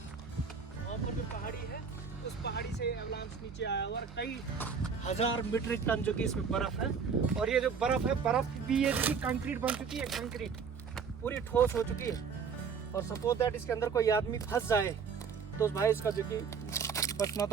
वहाँ पर जो पहाड़ी है उस पहाड़ी से एवलांच नीचे आया हुआ है। कई हजार मीट्रिक टन जो कि इसमें बर्फ है। और ये जो बर्फ है, बर्फ भी ये जो कि कंक्रीट बन चुकी है, कंक्रीट पूरी ठोस हो चुकी है। और सपोज दैट इसके अंदर कोई आदमी फंस जाए तो भाई इसका जो कि बचना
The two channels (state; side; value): quieter; left; 6.1 dB